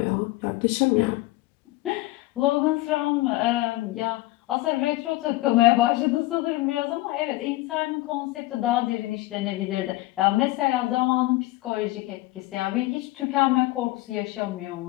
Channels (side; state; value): right; quieter; 19.2 dB